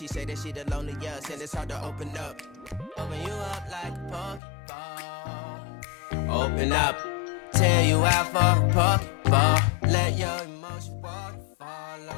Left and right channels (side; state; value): right; drops out; at 4.4 s